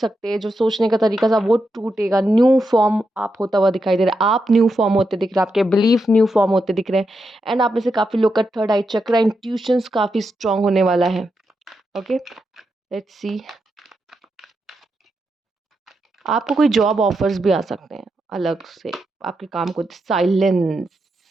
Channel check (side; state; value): both; normal; correlation 0.85